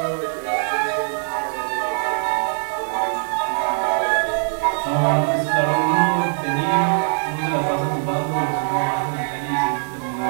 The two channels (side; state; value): left; silent; 56 dB below the other